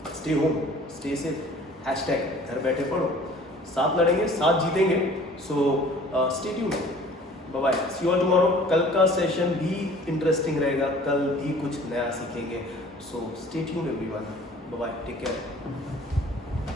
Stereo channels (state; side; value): normal; both; correlation 0.50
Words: stay home, stay safe, # घर बैठे पढ़ो, साथ लड़ेंगे, साथ जीतेंगे. So stay tuned. Bye bye. See you all tomorrow. कल का सेशन भी इंटरेस्टिंग रहेगा, कल भी कुछ नया सीखेंगे. So stay tuned everyone. Bye bye. Take care.